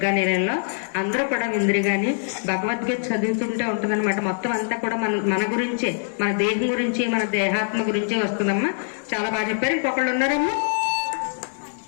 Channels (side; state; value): right; silent; digital silence